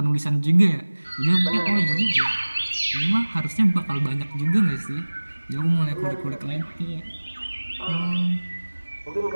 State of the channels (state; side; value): inverted; both; correlation -1.00